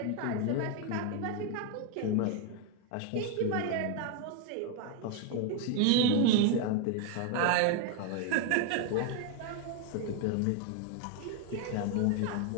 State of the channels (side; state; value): both; different; correlation 0.01